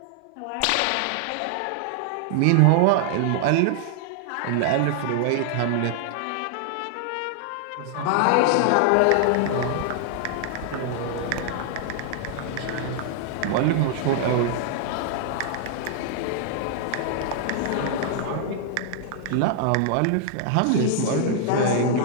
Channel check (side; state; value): both; different; correlation -0.01